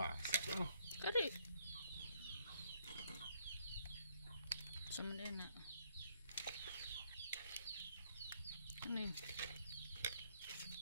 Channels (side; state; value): both; inverted; correlation -0.68